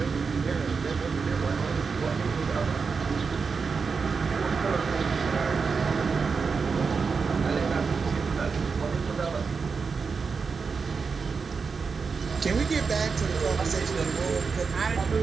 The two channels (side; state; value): left; quieter; 5.2 dB